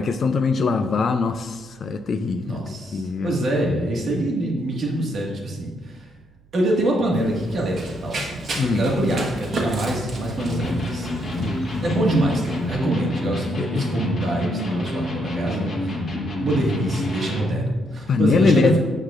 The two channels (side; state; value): right; noise; hum, 29 dB below the sound